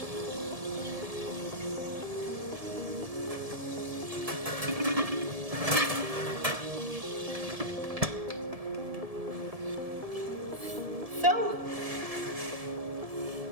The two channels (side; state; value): left; late; 1.7 ms